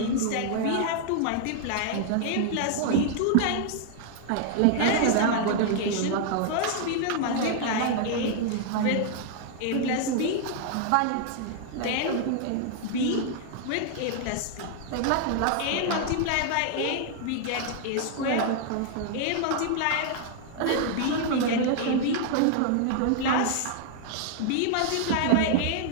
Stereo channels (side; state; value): both; different; correlation 0.00